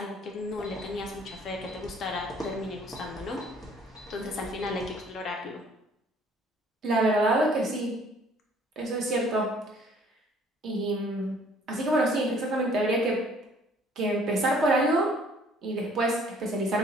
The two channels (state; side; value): normal; both; correlation 0.58